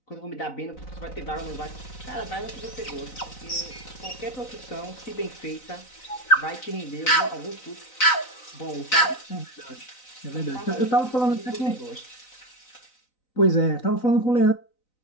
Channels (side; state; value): right; late; 4.0 ms